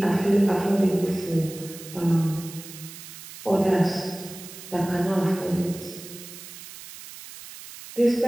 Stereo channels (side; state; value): right; noise; hiss, 15 dB below the sound